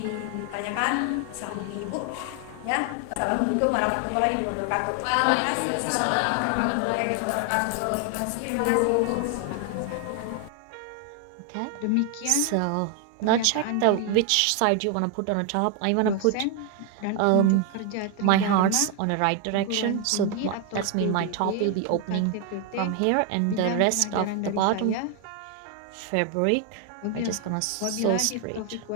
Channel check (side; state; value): both; different; correlation 0.01